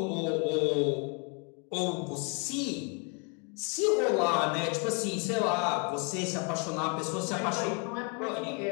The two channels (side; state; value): right; quieter; 35.6 dB